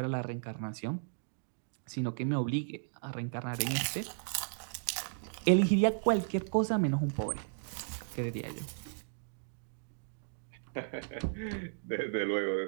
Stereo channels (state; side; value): silent; left; digital silence